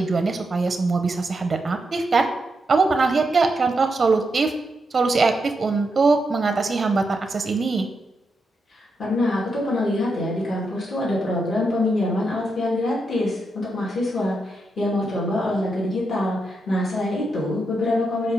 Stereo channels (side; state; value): both; normal; correlation 0.84